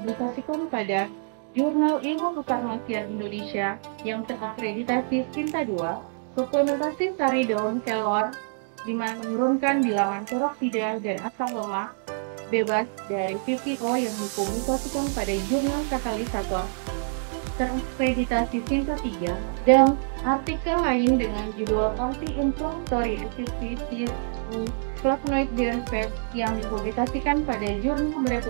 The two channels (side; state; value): left; silent; digital silence